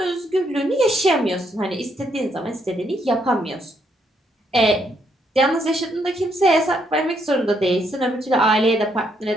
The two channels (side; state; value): both; normal; correlation 0.74